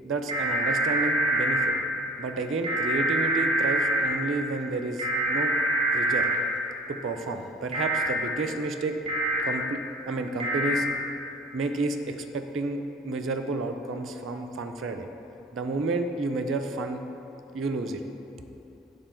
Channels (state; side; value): normal; both; correlation 0.43